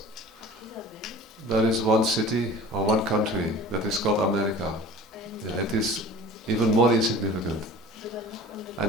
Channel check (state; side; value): normal; both; correlation 0.42